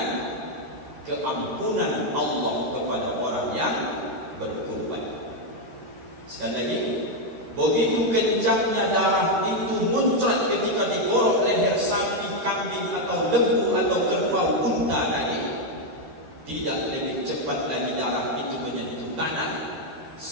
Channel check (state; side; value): late; left; 13 ms